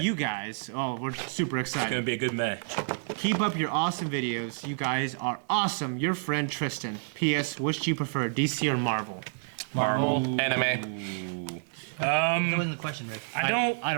you guys. Oh, we're super It's gonna excited. be a good match. Keep up your awesome videos. You guys are awesome. Your friend Tristan. P.S. Which do you prefer, DC or Marvel? Marvel. Anime. That wasn't the question, Rick. I don't. I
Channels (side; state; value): left; silent; 59 dB below the other